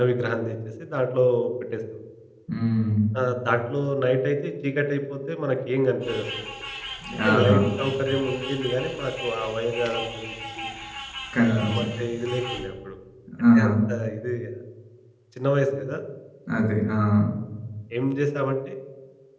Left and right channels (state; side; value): identical; both; correlation 1.00